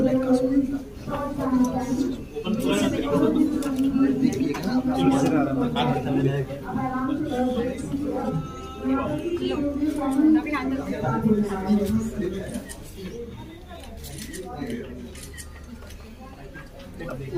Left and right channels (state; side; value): identical; both; correlation 1.00